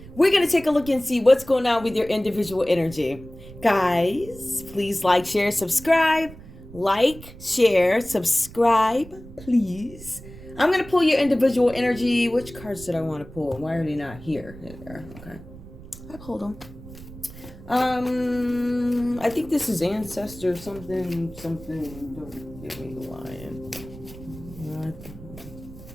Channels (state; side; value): noise; right; rumble, 17 dB below the sound